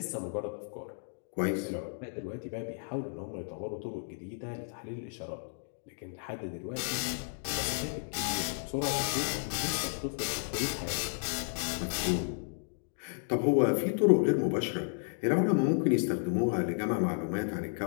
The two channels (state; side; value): silent; right; digital silence